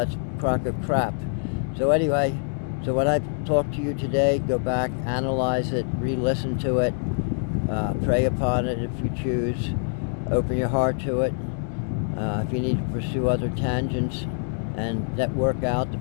that's a crock of crap. So anyway, so when I talk to you today, go back, analyze it, re-listen to it, pray upon it if you choose, open your heart to it. If you need to pursue other tangents and network out to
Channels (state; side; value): silent; right; digital silence